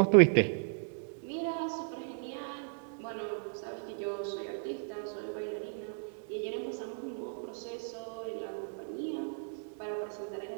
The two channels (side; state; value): left; silent; digital silence